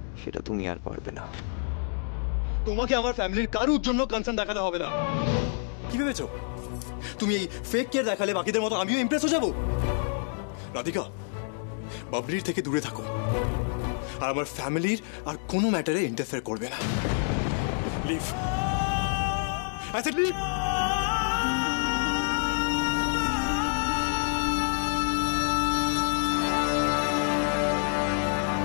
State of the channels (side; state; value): right; silent; 59 dB below the other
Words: সেটা তুমি আর পারবে না। তোমাকে আমার ফ্যামিলির কারোর জন্য কনসার্ন দেখাতে হবে না। কি ভেবেছো তুমি এই ফেক কেয়ার দেখালে বাকিদের মতো আমিও ইমপ্রেস হয়ে যাব? রাধিকা, বাবলির থেকে দূরে থাকো, আর আমার ফ্যামিলির আর কোনো ম্যাটারে ইন্টারফেয়ার করবে না। Leave, I said leave.